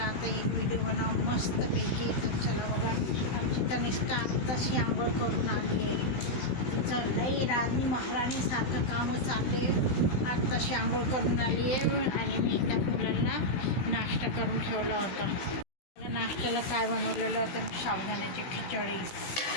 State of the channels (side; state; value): right; late; 17 ms